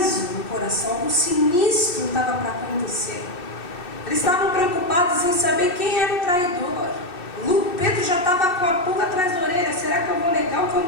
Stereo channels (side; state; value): right; late; 2.7 ms